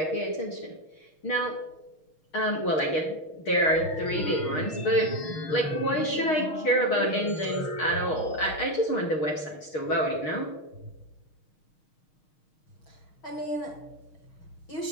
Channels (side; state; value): right; late; 6.4 ms